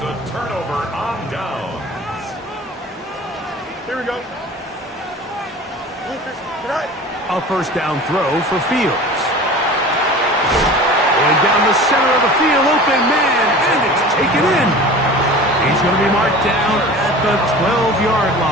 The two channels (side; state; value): both; normal; correlation 0.39